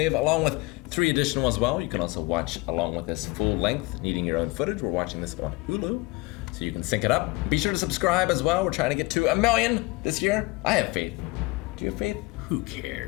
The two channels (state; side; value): quieter; right; 23.7 dB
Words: along with 3 additional as well. You can also watch along with this full length, needing your own footage. We're watching this on Hulu, so you can sync it up. Be sure to subscribe as well. We're trying to get to 1 million this year. I have faith. Do you have faith? Who